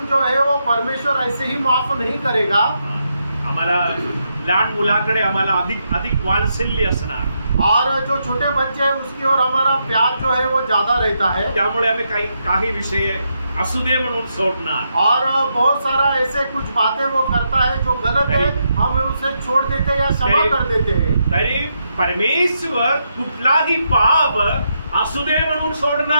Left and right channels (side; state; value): both; inverted; correlation -0.81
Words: जो है वो परमेश्वर ऐसे ही माफ नहीं करेगा। आम्हाला लहान मुलाकडे आम्हाला अधिक वात्सल्य असणार, और जो छोटे बच्चे हैं उसकी ओर हमारा प्यार जो है वो ज्यादा रहता है, त्यामुळे आम्ही काही विषय असू दे म्हणून सोडणार। और बहुत सारा ऐसे कुछ बातें वो करता है जो गलत है, हम उसे छोड़ देते हैं या क्षमा कर देते हैं। तरी परमेश्वर कुठलाही पाप असू दे म्हणून